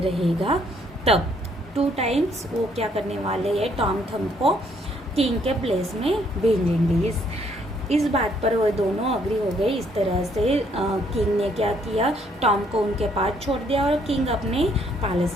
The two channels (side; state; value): both; normal; correlation 0.67